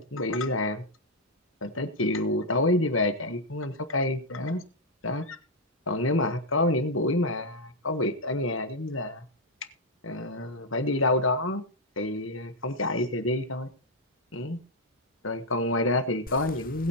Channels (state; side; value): normal; both; correlation -0.01